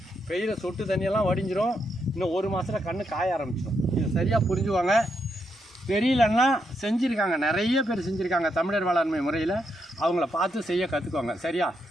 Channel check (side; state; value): both; normal; correlation 0.80